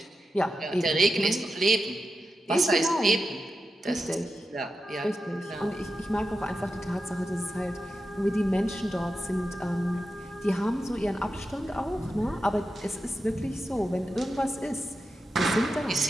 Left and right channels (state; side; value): normal; both; correlation 0.89